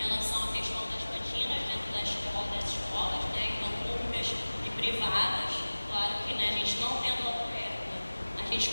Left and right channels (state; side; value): inverted; both; correlation -1.00